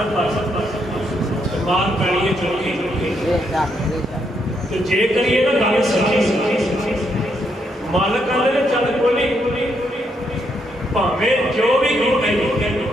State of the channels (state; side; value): normal; both; correlation 0.77